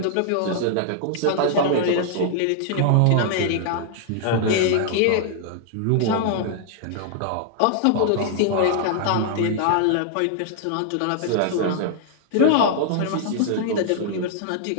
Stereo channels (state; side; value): different; both; correlation -0.01